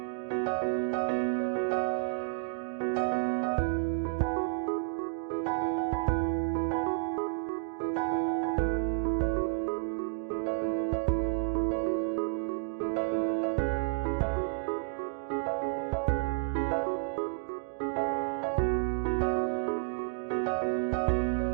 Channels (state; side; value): silent; left; digital silence